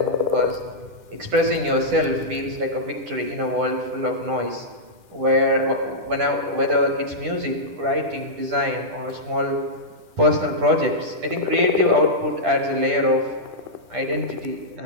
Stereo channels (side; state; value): left; late; 10 ms